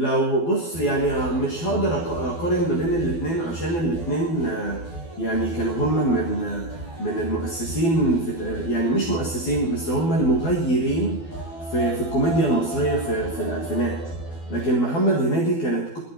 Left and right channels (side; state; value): right; late; 12 ms